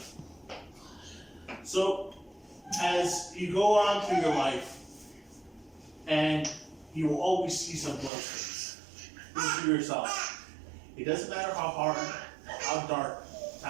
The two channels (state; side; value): drops out; left; at 8.1 s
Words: So, as you go on through your life, and you will always see some glow sticks. Think to yourself, it doesn't matter how hard or how dark